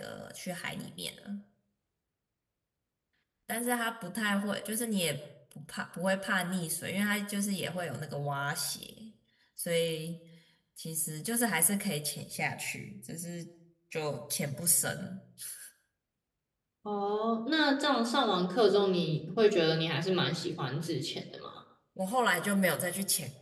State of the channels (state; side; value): identical; both; correlation 1.00